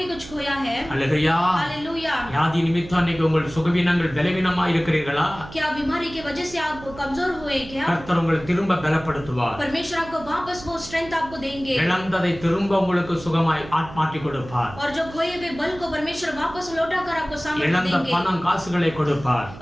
कुछ खोया है. हालेलुया. हालेलुया. வியாதி நிமித்தம் இன்னைக்கு உங்கள் சுகவீனங்கள் பலவீனமா இருக்கிறீர்களா? क्या बीमारी की वजह से आप कमजोर हुए क्या? கர்த்தர் உங்களை திரும்ப பலப்படுத்துவார். परमेश्वर आपको वापस वो स्ट्रेंथ आपको देंगे. இழந்ததை திரும்ப உங்களுக்கு சுகமாய் மாற்றி கொடுப்பார். और जो खोए हुए बल को परमेश्वर वापस लौटाकर आपको सामर्थ्य இழந்த देंगे. பணம் காசுகளை கொடுப்பார்.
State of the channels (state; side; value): noise; right; hum, 16 dB below the sound